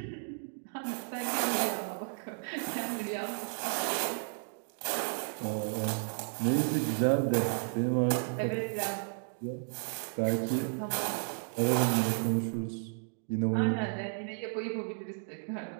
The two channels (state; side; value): silent; left; 56 dB below the other